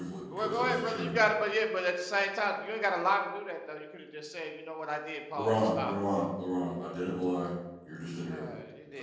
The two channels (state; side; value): identical; both; correlation 1.00